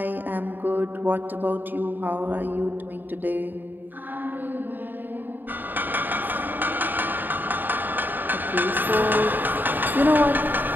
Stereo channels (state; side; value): late; left; 0.091 ms